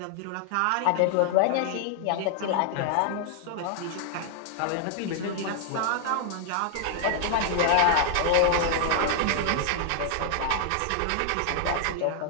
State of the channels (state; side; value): different; both; correlation 0.00